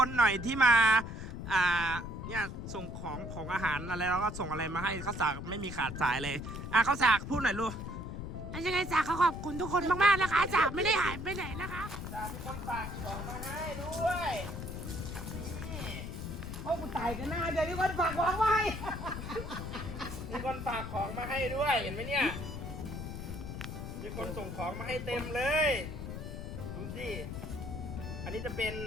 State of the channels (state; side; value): noise; left; rumble, 7 dB below the sound